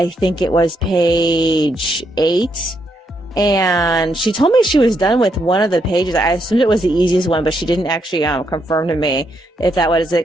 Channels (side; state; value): both; normal; correlation 0.77